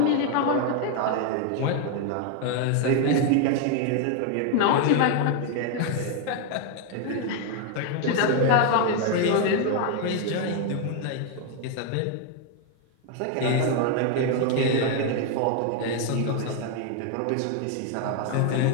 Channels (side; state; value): both; different; correlation 0.01